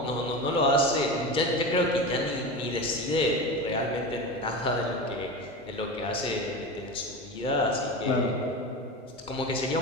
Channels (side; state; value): both; normal; correlation 0.25